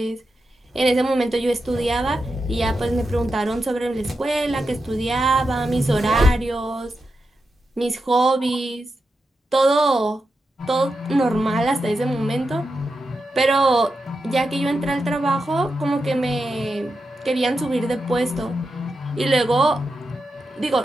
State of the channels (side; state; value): both; normal; correlation 0.88